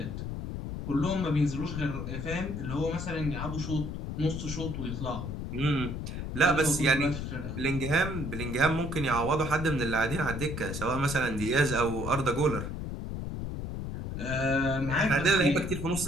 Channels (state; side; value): noise; left; rumble, 5 dB below the sound